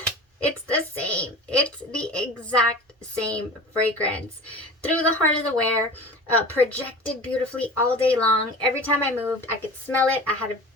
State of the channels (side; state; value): both; normal; correlation 0.36